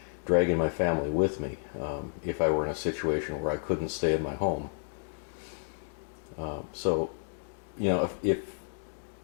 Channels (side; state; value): right; silent; digital silence